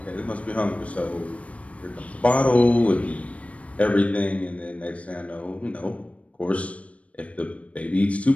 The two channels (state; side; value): late; right; 0.064 ms